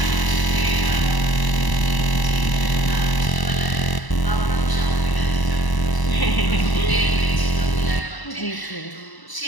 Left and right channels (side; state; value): right; late; 1.0 ms